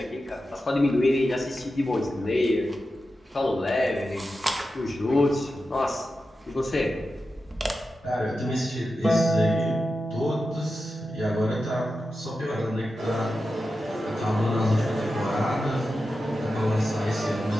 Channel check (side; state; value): both; normal; correlation 0.91